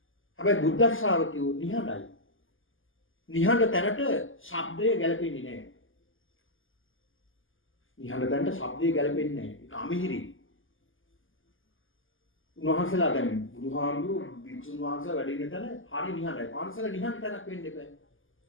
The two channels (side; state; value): right; late; 0.58 ms